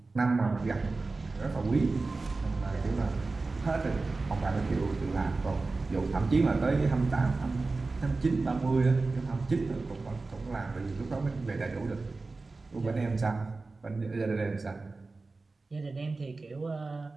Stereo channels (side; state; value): left; quieter; 3.6 dB